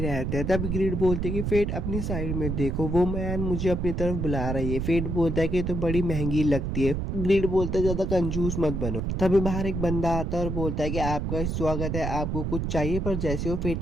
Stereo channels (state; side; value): noise; right; rumble, 2 dB below the sound